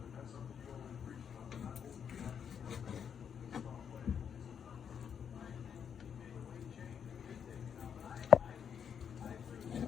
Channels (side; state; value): right; quieter; 7.6 dB